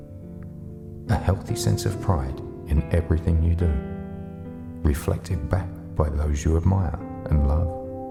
A healthy sense of pride in everything you do, reflected back by those you admire and love.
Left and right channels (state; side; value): identical; both; correlation 1.00